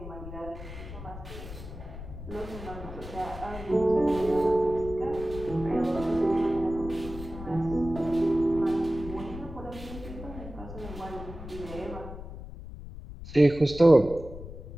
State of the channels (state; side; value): noise; left; rumble, 12 dB below the sound